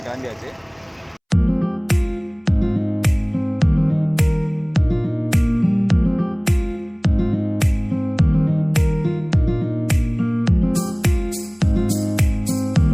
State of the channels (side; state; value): both; identical; correlation 1.00